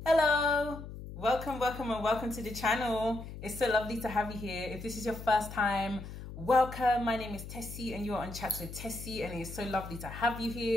Hello, welcome to the channel. It's so lovely to have you here. If this is your first time, welcome. My name is Tessie and you are on Chats with Tessie, and it's so lovely to have you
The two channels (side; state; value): left; noise; hum, 11 dB below the sound